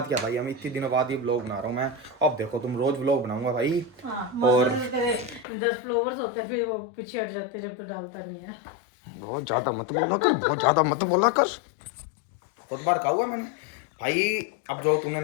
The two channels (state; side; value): drops out; right; at 5.5 s